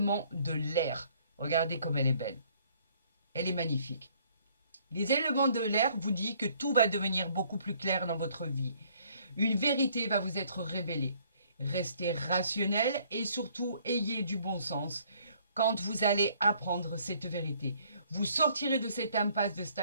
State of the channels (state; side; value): inverted; both; correlation -0.62